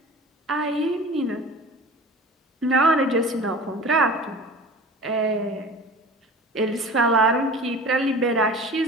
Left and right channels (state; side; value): normal; both; correlation 0.39